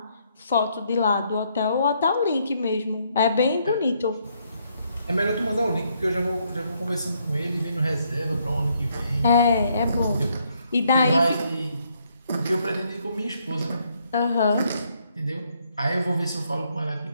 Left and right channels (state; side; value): inverted; both; correlation -0.72